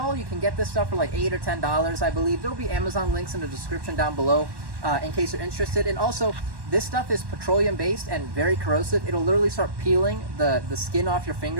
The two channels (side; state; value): left; late; 1.1 ms